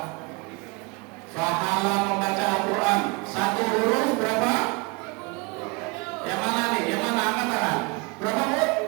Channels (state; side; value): quieter; left; 28.5 dB